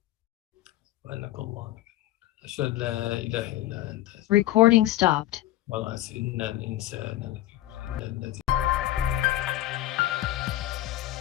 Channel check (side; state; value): right; quieter; 14.9 dB